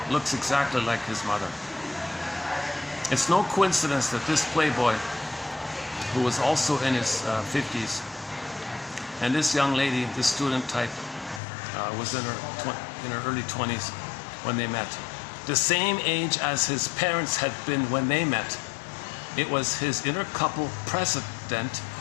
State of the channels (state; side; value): drops out; right; at 11.4 s